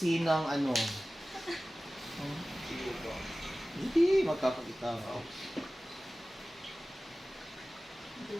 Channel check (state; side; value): normal; both; correlation 0.97